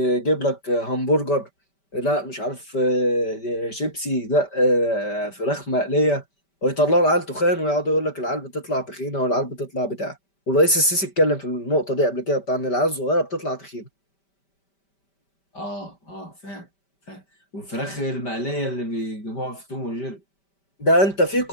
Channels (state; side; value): late; right; 5.1 ms